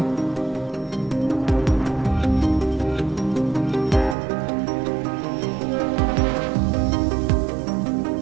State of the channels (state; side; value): drops out; left; at 4.2 s